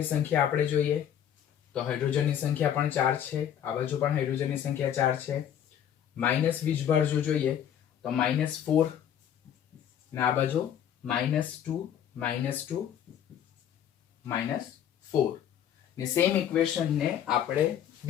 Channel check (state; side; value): quieter; right; 9.7 dB